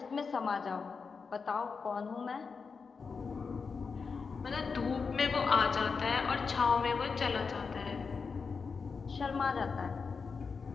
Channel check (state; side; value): quieter; right; 5.2 dB